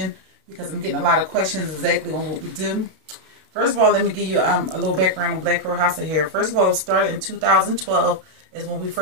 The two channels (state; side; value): late; left; 32 ms